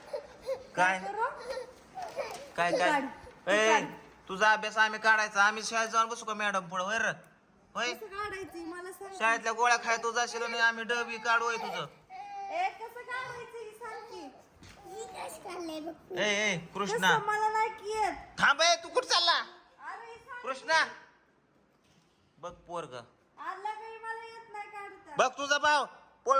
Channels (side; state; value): both; identical; correlation 1.00